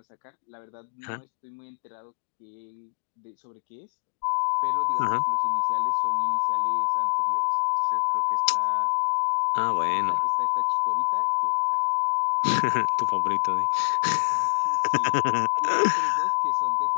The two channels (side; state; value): right; silent; digital silence